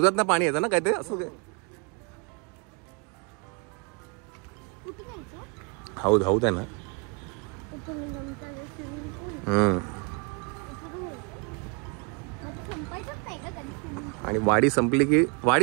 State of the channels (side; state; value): left; quieter; 31.4 dB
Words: ना पाणी येतं ना काय ते असं ते. हौद आहे ना. आणि वाडी